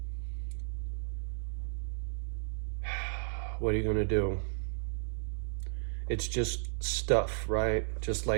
What are you going to do? It's just stuff, right? Just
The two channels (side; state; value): left; silent; digital silence